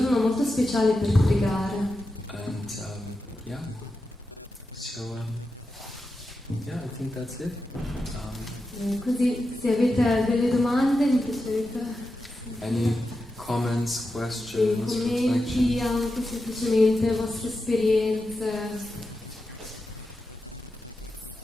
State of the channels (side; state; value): both; normal; correlation 0.89